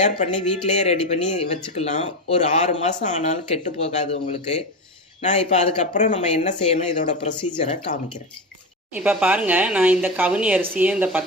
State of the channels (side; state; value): both; normal; correlation 0.18